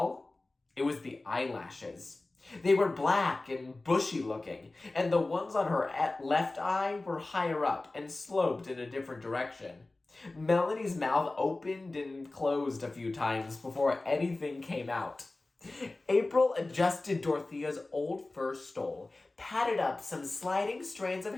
it was the eyelashes. They were black and bushy looking, and the ones on her left eye were higher up and sloped in a different direction. Melanie's mouth opened and closed a few times before anything came out. April adjusted Dorothea's old fur stole, patted up some sliding strands of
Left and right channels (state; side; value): quieter; right; 3.1 dB